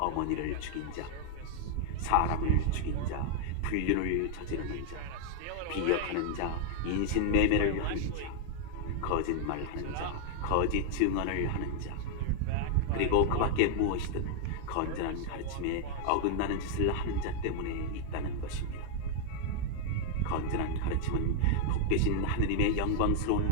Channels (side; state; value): both; different; correlation 0.00